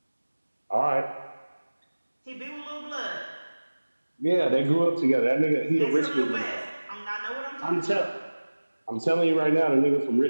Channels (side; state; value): both; inverted; correlation -1.00